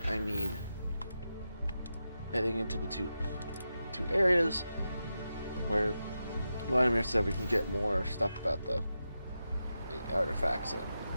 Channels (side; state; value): both; inverted; correlation -0.89